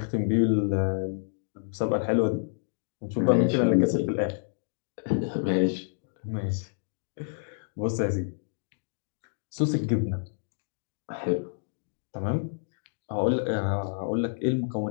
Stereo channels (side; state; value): right; silent; digital silence